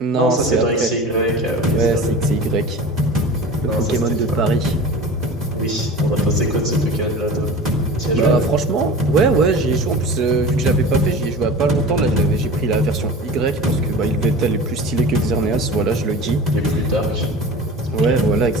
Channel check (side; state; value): both; normal; correlation 0.36